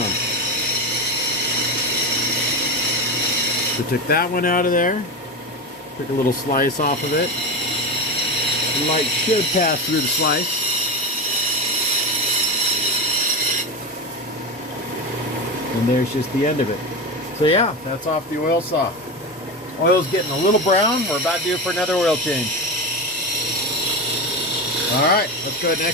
So took that one out of there. Took a little slice off of it. The light should pass through the slice. And there's just the end of it. So yeah, that's off the oil saw. Oil's getting a little brown. We're about due for another oil change. All right, let's go ahead and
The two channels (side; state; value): both; normal; correlation 0.19